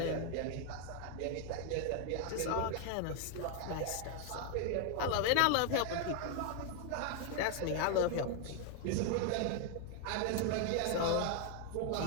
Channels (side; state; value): both; different; correlation 0.01